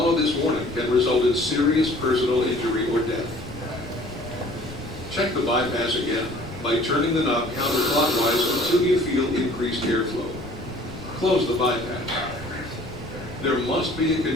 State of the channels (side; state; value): left; noise; rumble, 16 dB below the sound